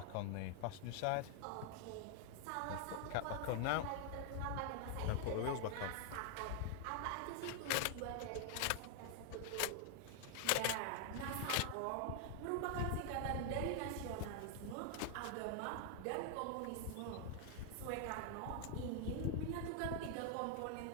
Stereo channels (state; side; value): different; both; correlation 0.00